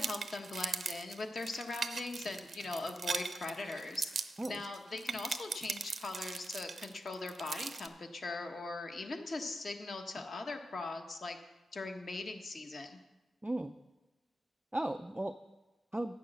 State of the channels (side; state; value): both; normal; correlation 0.88